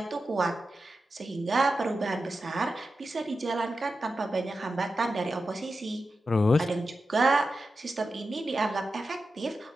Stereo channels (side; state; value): both; normal; correlation 0.91